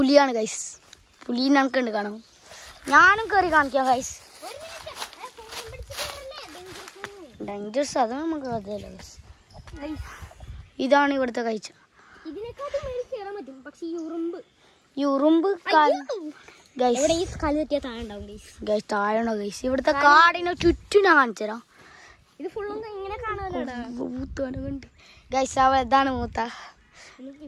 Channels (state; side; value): identical; both; correlation 1.00